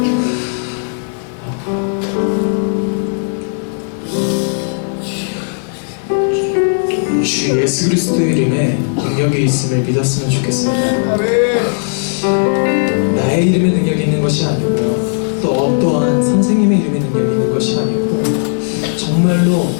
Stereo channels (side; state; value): right; silent; digital silence